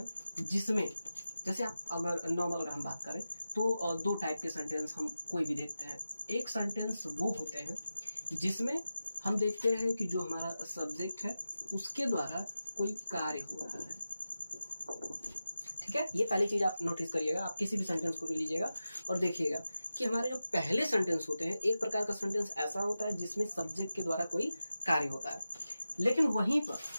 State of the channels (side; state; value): both; inverted; correlation -0.93